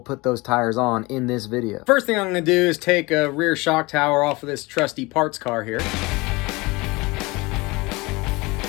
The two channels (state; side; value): quieter; right; 23.8 dB